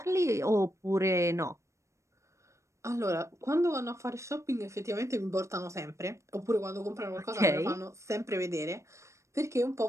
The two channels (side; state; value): left; late; 0.14 ms